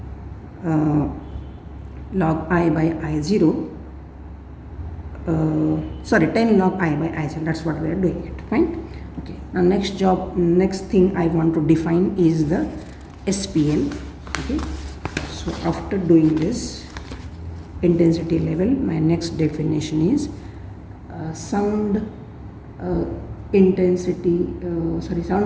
log I by I0 sorry, 10 log I by I cell. That's what we are doing it. Fine. Okay. Now next thing I want to define is the SPL. Okay. So after doing this intensity level, my next definition is sound intensity,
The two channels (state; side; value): identical; both; correlation 1.00